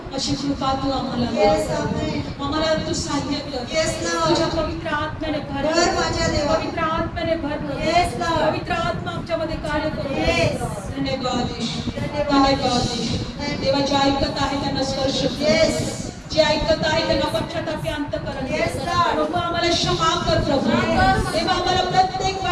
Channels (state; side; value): identical; both; correlation 1.00